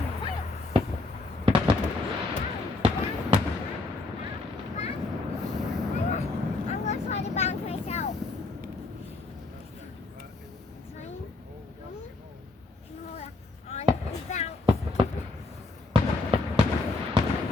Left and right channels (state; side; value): quieter; right; 3.4 dB